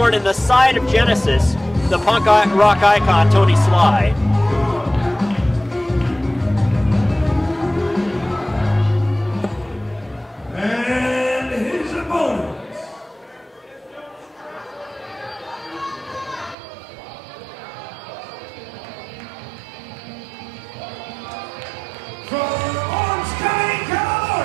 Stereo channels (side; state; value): left; drops out; at 16.6 s